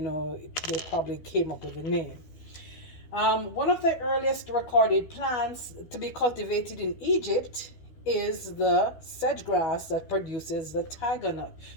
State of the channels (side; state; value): right; late; 13 ms